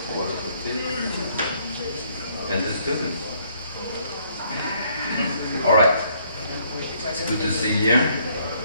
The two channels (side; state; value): both; inverted; correlation -0.66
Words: and the students. All right. It's good to see you.